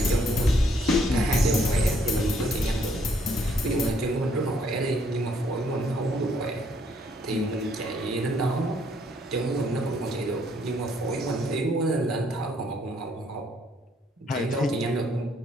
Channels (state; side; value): normal; both; correlation 0.68